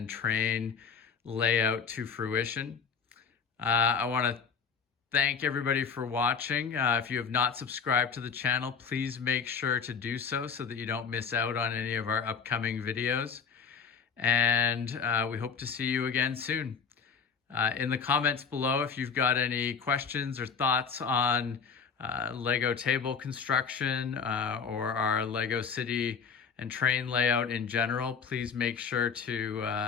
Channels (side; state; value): right; quieter; 6.2 dB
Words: train layout to fruition. I want to thank everybody for watching. If you have not subscribed to the channel, please make sure to do so that you don't miss out on any of our upcoming videos. And we hope to see you again soon. In the comments below, if you've got any questions or thoughts on Lego table construction or our Lego City and train layout in general, please make sure